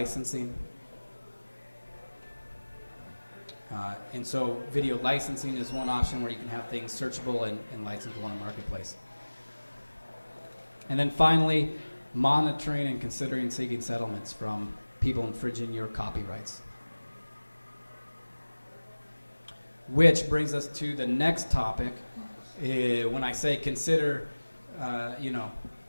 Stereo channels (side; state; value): both; inverted; correlation -1.00